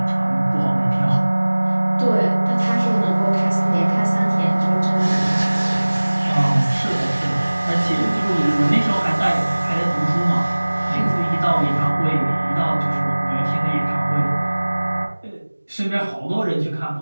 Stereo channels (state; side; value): inverted; both; correlation -1.00